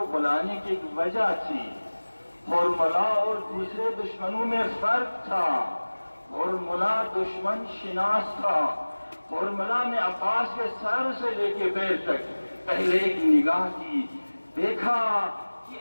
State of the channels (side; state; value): both; inverted; correlation -1.00